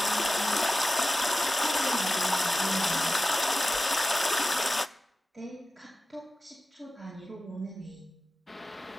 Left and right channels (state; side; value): normal; both; correlation 0.95